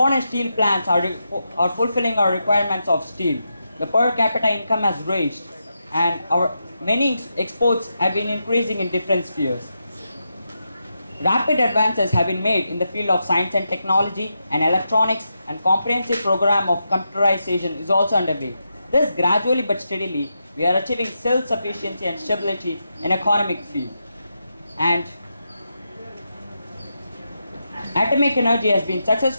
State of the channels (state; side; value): inverted; both; correlation -0.86